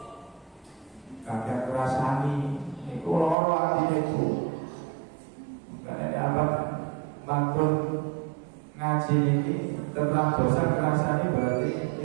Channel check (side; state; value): left; drops out; at 3.4 s